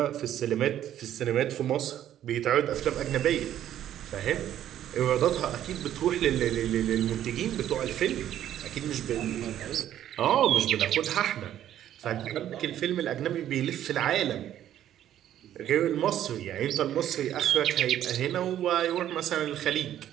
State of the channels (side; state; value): left; quieter; 11.4 dB